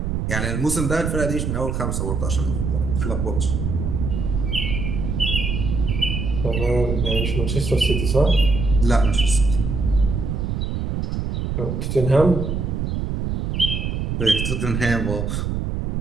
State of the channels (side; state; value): right; noise; rumble, 1 dB below the sound